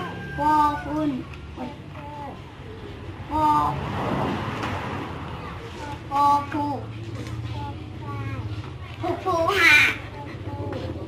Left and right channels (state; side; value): identical; both; correlation 1.00